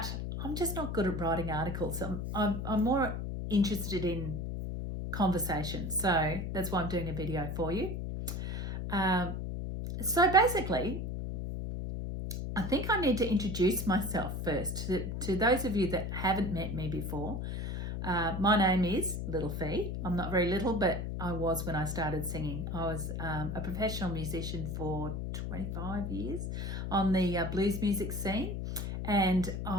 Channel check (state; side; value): noise; left; hum, 4 dB below the sound